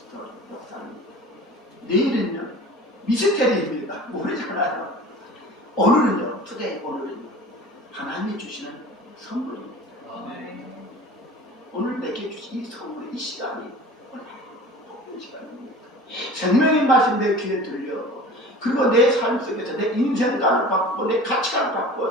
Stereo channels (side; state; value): both; normal; correlation 0.40